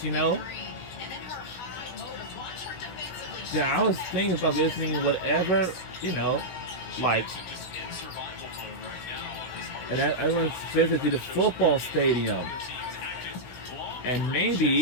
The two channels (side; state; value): right; late; 16 ms